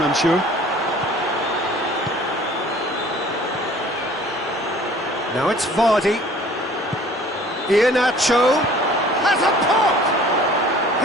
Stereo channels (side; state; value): both; normal; correlation 0.51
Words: I'm sure. Now it's Vardy. Iheanacho has a pop!